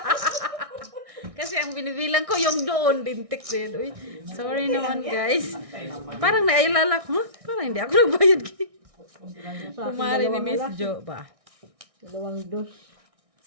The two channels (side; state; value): left; late; 1.6 ms